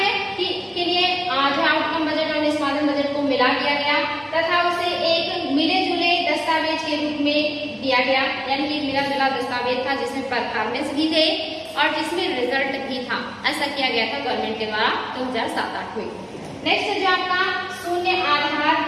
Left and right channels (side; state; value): both; identical; correlation 1.00